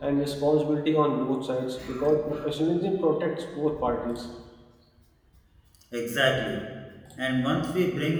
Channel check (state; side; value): identical; both; correlation 1.00